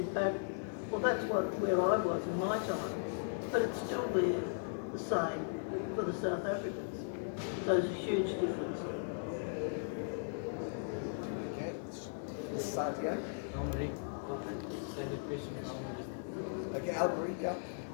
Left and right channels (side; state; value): right; silent; digital silence